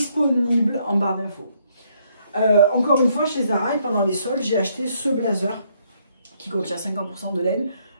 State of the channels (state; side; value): inverted; both; correlation -0.70